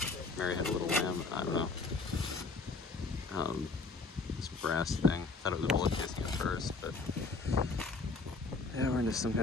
Mary had a little lamb. I don't know. This brass thing. Thought it was a bullet casing at first, but yeah, we're into some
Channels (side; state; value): right; quieter; 3.9 dB